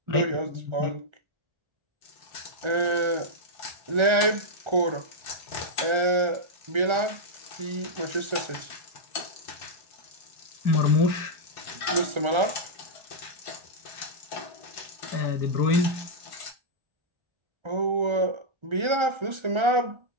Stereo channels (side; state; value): left; late; 1.3 ms